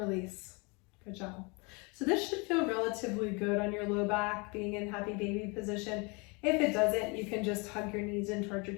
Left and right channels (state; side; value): quieter; right; 29.9 dB